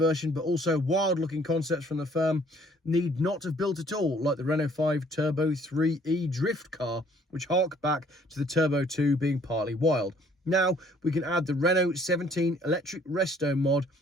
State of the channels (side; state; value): both; normal; correlation 0.60